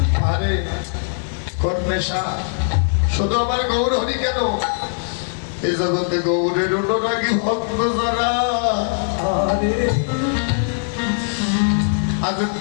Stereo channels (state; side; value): silent; right; digital silence